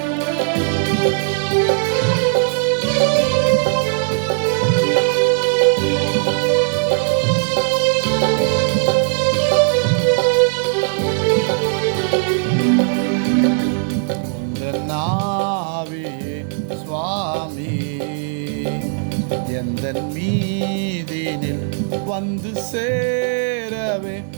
ஆவியே சுவாமி எந்தன் மீதினில் வந்து சேரவே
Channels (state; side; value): silent; left; 67 dB below the other